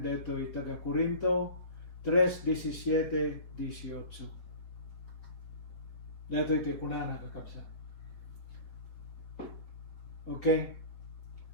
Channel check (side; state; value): right; late; 4.6 ms